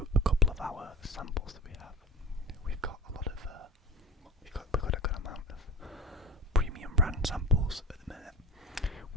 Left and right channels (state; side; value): normal; both; correlation 0.32